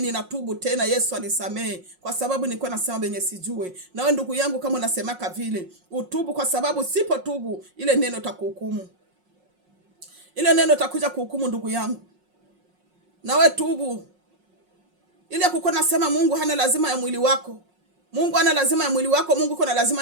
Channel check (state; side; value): late; left; 5.5 ms